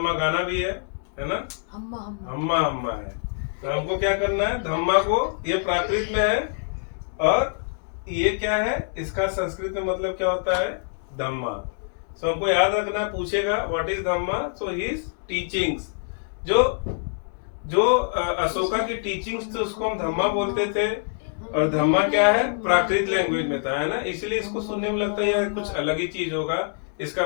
गाना भी है ना। हम्मा हम्मा हम्मा है। तो हमको क्या करना है? धम्मा को, ये प्राकृत में है और ये क्या है? इसका संस्कृत में मतलब क्या होता है? धम्मा। हमको याद रखना, पूछेगा what is Dhamma, so his teachings. जो जो अशोका की टीचिंग्स थी उसको हम धम्मा बोलते थे, और धम्मा क्या है, प्राकृत लैंग्वेज में था, है ना। इसलिए इसको सुनने में लगता है यार कुछ अलग ही चीज होगा। इसका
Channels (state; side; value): silent; right; digital silence